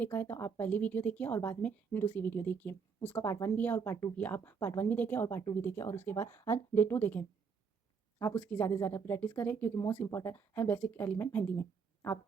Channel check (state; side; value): quieter; left; 5.8 dB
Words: है तो आप पहली वीडियो देखिए और बाद में दूसरी वीडियो देखिए। उसका पार्ट 1 भी है और पार्ट 2 भी है। आप पार्ट 1 भी देखें और पार्ट 2 भी देखें और उसके बाद आज डे 2 देखें। आप उसकी ज़्यादा से ज़्यादा प्रैक्टिस करें क्योंकि मोस्ट इंपॉर्टेंट है बेसिक एलिमेंट मेहंदी में। आप